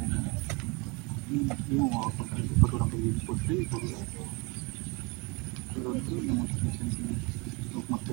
Ini mau apa kali itu orang pergi putri baru turun tuh yang untuk sini untuk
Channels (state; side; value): quieter; left; 28.7 dB